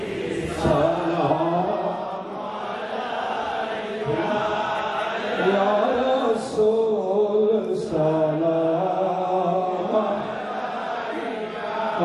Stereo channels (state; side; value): identical; both; correlation 1.00